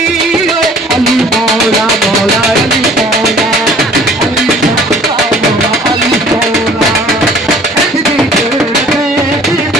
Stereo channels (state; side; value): normal; both; correlation 0.52